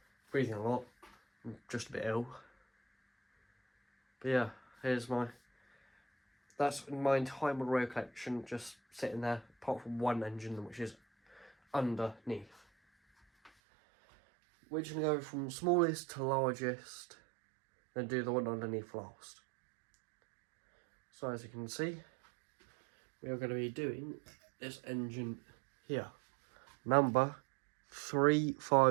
Breathing a lot. I'm just a bit ill. But yeah, that's my entire model railway collection just sitting there, apart from one engine which is underneath. We're just going to go from smallest to largest, then do the one underneath last. So as you can see, we are going to be doing this engine here. Number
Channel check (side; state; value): left; drops out; at 13.5 s